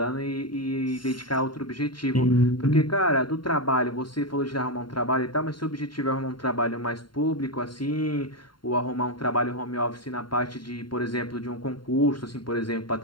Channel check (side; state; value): right; late; 0.72 ms